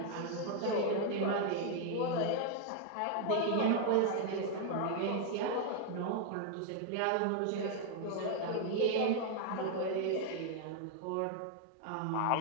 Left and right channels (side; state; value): both; different; correlation 0.00